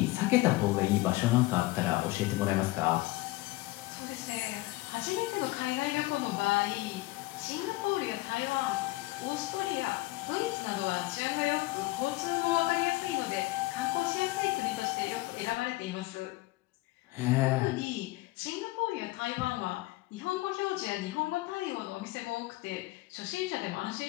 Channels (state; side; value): quieter; right; 19.9 dB